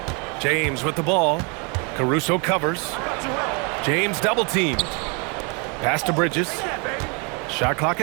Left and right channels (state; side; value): quieter; left; 33.3 dB